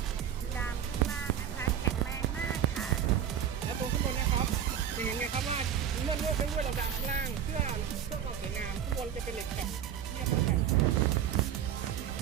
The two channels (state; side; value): quieter; left; 9.3 dB